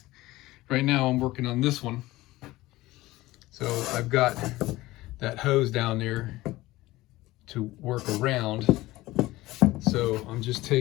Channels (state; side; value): quieter; right; 18.2 dB